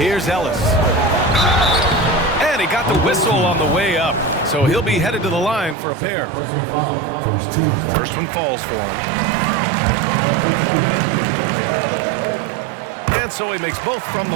Ellis. And he got the whistle on the way up. So he'll be headed to the line for a pair. Personal foul. First team. First one falls for him. And so he makes both from the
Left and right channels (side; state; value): left; drops out; at 5.8 s